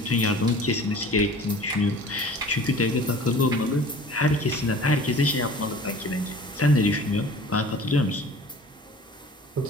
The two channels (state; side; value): normal; both; correlation 0.45